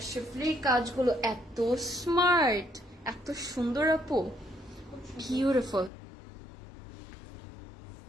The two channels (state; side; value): drops out; right; at 5.9 s